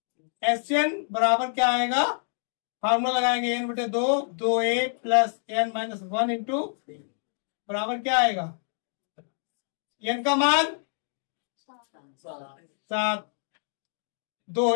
एस एन बराबर क्या आएगा? फार्मूला लगाएंगे, एन बटे 2, 2a plus N minus 1 into बराबर क्या आएगा? एन का मान 7, 2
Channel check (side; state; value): right; silent; digital silence